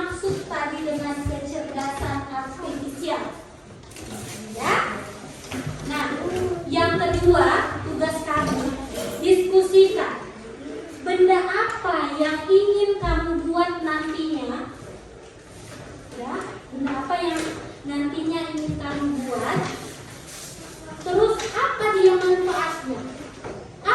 tadi dengan kecerdasan artifisial? Ya. Nah, yang kedua, tugas kamu diskusikan benda apa yang ingin kamu buat nantinya. Ya, benda apa yang nantinya ingin kamu buat. Terus apa dia manfaatnya?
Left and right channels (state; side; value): identical; both; correlation 1.00